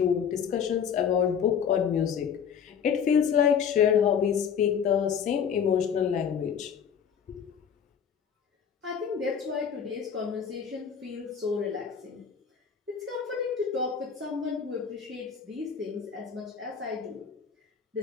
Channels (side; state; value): right; quieter; 7.4 dB